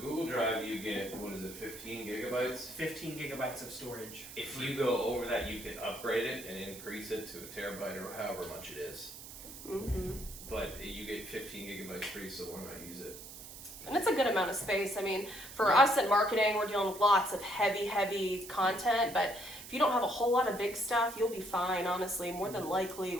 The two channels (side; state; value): right; noise; hiss, 13 dB below the sound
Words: Drive, you get, what is it, 15 gigabytes? 15 gigabytes of storage. If you go over that, you can upgrade it and increase it to a terabyte or however much it is. Mm-hmm. But you get 15 gigabytes free, so why not use it? And it's a good amount of space. I mean, for us in marketing, we're dealing with lots of heavy content, but if you don't have a whole lot of big stuff, you'll be fine, honestly, more than likely